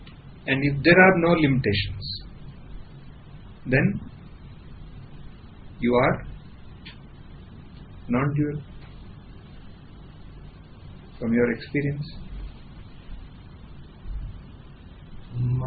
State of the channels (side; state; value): both; identical; correlation 1.00